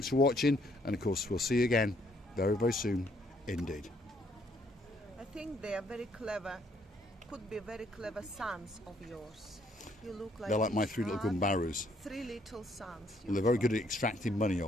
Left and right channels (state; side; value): normal; both; correlation 0.68